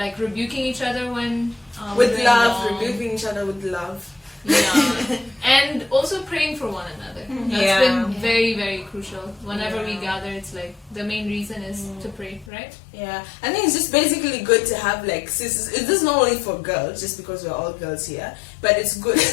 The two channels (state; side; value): drops out; right; at 12.5 s